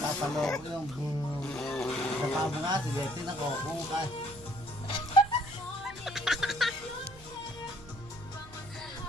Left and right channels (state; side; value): noise; right; hum, 19 dB below the sound